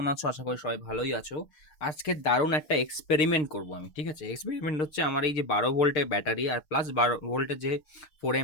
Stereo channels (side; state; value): right; late; 6.6 ms